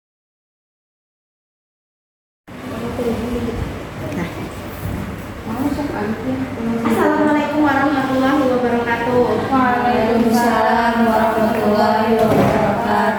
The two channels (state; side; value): identical; both; correlation 1.00